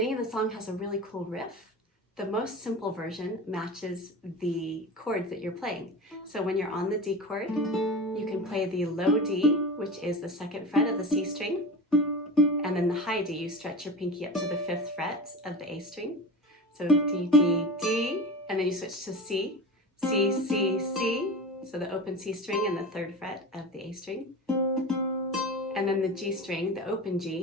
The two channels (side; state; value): both; normal; correlation 0.30